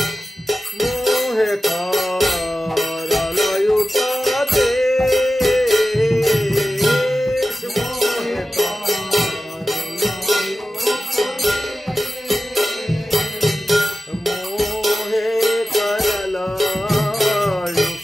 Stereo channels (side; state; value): both; normal; correlation 0.95